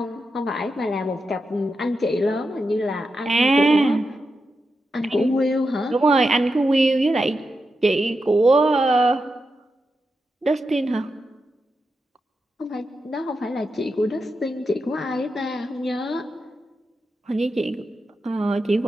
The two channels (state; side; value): normal; both; correlation 0.88